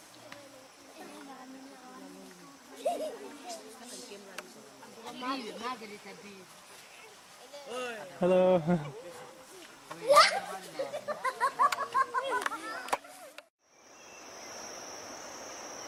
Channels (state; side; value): identical; both; correlation 1.00